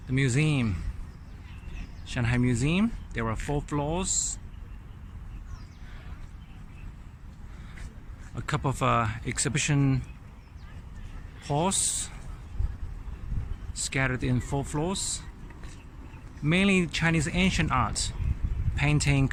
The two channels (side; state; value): both; identical; correlation 1.00